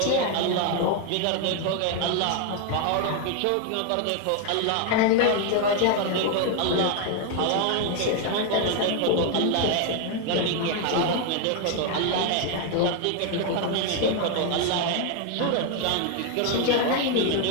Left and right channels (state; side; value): different; both; correlation 0.01